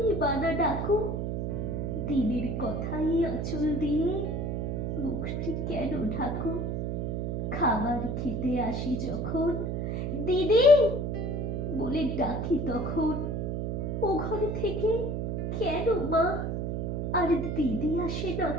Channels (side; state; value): right; noise; hum, 1 dB below the sound